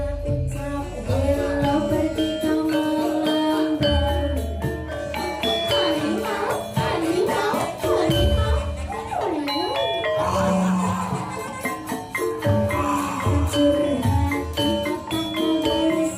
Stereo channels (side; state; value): both; identical; correlation 1.00